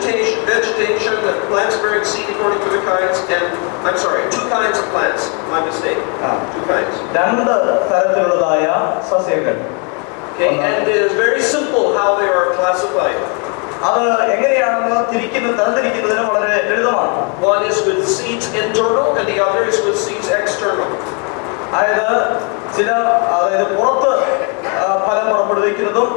the plants bearing seed according to the kinds, and I'm sorry, 2 kinds of plants. My mistake. 2 kinds. 2 തരത്തിലുള്ളതായ സസ്യങ്ങൾ. Okay, and it is very simple how they are classified. അത് എങ്ങനെയാണെന്ന് തരംതിരിക്കുന്നതിന് വളരെ ലളിതമാണ്. One is with seeds internal and the other is with seeds external. അതായത് പുറത്ത് ഫലം പുറപ്പെടുവിക്കുന്നതും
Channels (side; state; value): right; quieter; 36.2 dB